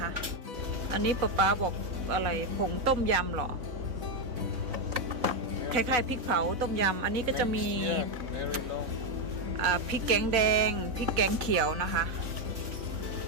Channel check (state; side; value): late; left; 4.0 ms